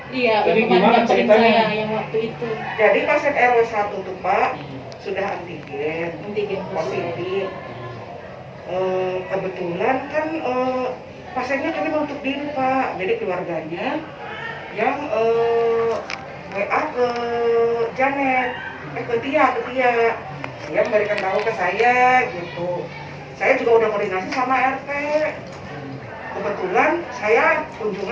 Iya, Jadi yang gimana kemarin ceritanya? saya yang waktu itu Jadi pasien RW 1 tuh Pak sudah antigen antigen positif. Kebetulan kan pasiennya kami menutup diri Pak, jadi keluarganya yang WA ke Janet, ke Tia, dia memberikan tahu ke saya gitu. Saya juga udah koordinasi sama RT. Kebetulan saya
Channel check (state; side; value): identical; both; correlation 1.00